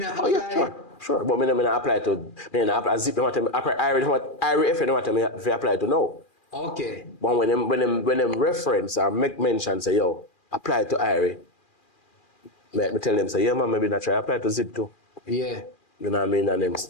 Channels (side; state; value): right; late; 2.4 ms